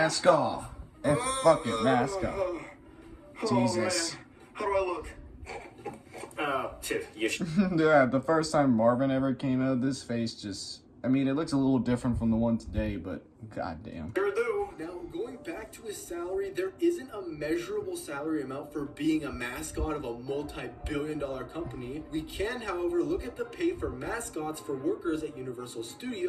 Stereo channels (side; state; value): both; identical; correlation 1.00